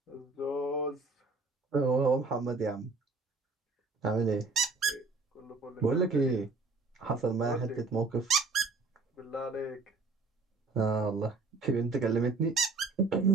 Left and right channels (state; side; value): quieter; left; 3.8 dB